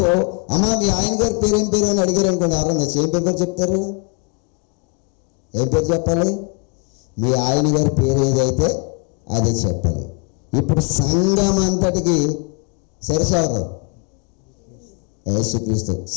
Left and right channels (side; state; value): right; quieter; 34.4 dB